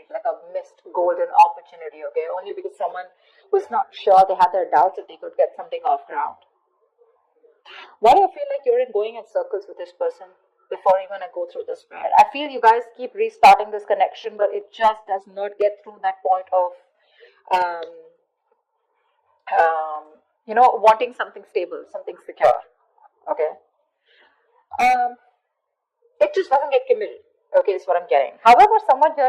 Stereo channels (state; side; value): identical; both; correlation 1.00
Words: like a missed golden opportunity, okay? Only because someone was not sure, they had their doubts that they could get something off ground. Why do you feel like you're going in circles with this person before even I go through this spread? I feel you guys keep restarting this connection, but it just does not get through that point of, wanting something stable, something secure, okay? It just doesn't get committed. Okay, is what I'm getting. However, someone here